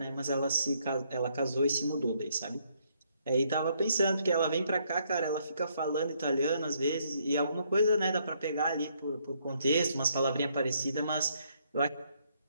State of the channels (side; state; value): both; inverted; correlation -0.71